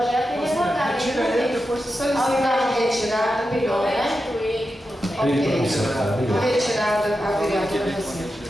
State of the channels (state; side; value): normal; both; correlation 0.90